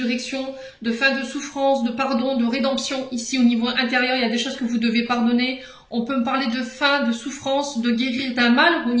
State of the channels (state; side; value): identical; both; correlation 1.00